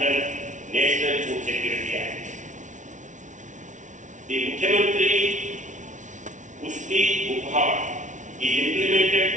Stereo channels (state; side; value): late; left; 0.36 ms